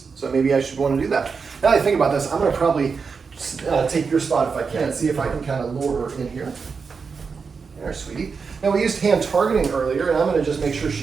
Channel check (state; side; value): quieter; left; 5.3 dB